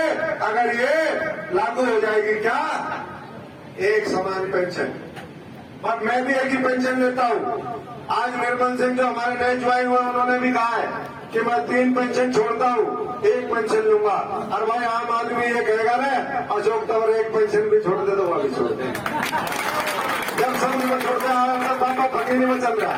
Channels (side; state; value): both; identical; correlation 1.00